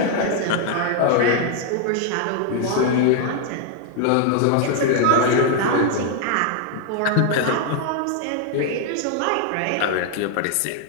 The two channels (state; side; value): different; both; correlation 0.00